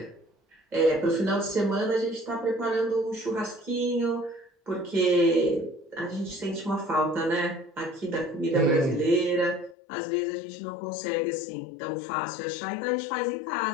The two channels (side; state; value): right; drops out; at 9.8 s